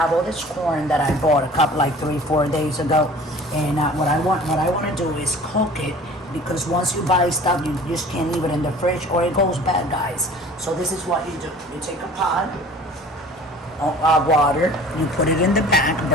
all this corn that I bought a couple like 3-4 days ago. And what I want to do is cook it, because once you buy stuff you just can't leave it in the fridge or it goes bad, guys. So this is what you do. You take a pot of water, you put it in the back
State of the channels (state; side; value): normal; both; correlation 0.46